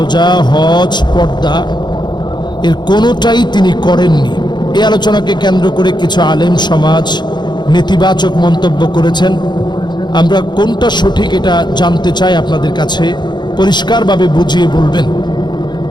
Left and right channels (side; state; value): right; late; 0.21 ms